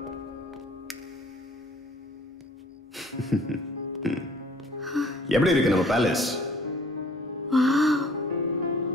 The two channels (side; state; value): both; normal; correlation 0.54